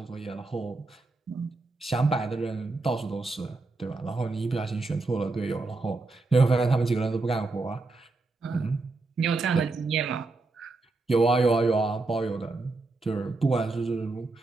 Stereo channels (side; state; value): left; quieter; 3.4 dB